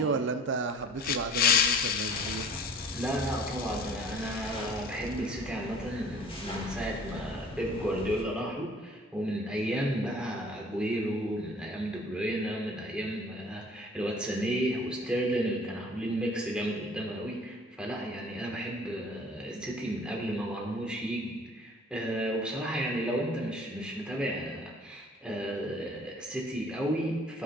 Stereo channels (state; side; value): normal; both; correlation 0.49